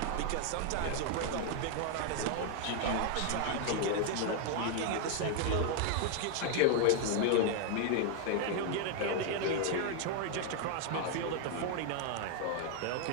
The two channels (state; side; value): different; both; correlation 0.00